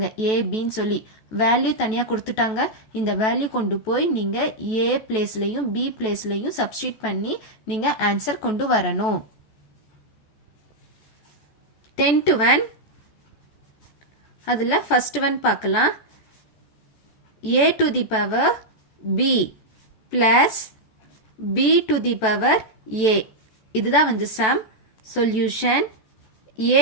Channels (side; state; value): right; late; 14 ms